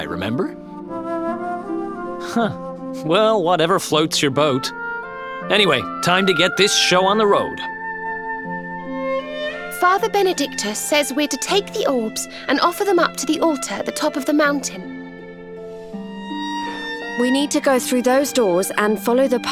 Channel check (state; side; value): identical; both; correlation 1.00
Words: remember? Huh. Well, whatever floats your boat. Anyway, time to get this show on the road. Father Benedictus says we're to take the orbs and offer them up to the altar at the top of the mountain. We need to go through those doors and follow the